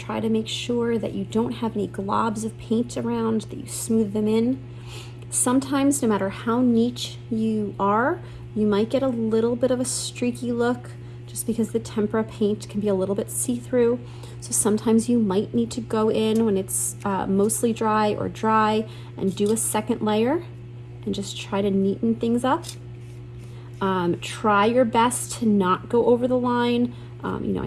try to make sure that you don't have any globs of paint around, that you smooth them in. Sometimes, no matter how neat you are, you might get a little bit of a streaky look just because the tempera paint can be a little bit see-through. So sometimes you might need to go in when it's mostly dry or dry and do a second layer and just try to neaten things up. Try your best to not go over the line. You know,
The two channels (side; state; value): both; identical; correlation 1.00